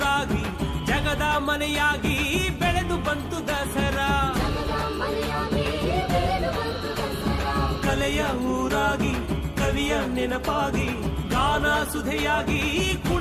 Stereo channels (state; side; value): identical; both; correlation 1.00